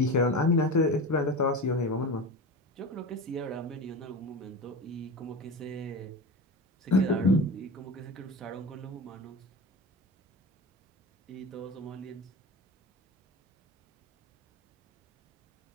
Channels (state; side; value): normal; both; correlation 0.27